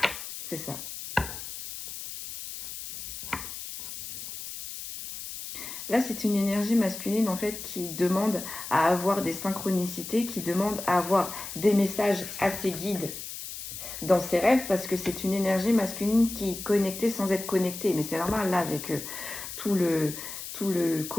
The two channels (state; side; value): noise; left; hiss, 9 dB below the sound